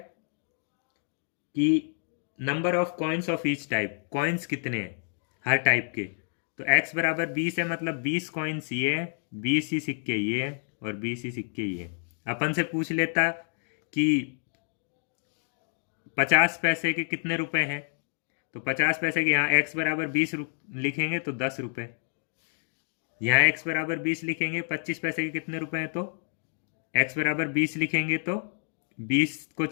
कि number of coins of each type, coins कितने हैं हर टाइप के। तो x बराबर 20 है, मतलब 20 कॉइन्स ये है, 20 ही सिक्के ये है और 20 ही सिक्के ये है। अपन से पूछ लेता कि 50 पैसे के कितने रुपए हैं, तो 50 पैसे के यहाँ x बराबर 20 लिखेंगे तो 10 रुपए। यहाँ x बराबर 20 लिखेंगे, 25 पैसे के कितने रुपए हैं, तो x बराबर 20 लिखेंगे तो 20 को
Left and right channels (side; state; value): right; silent; digital silence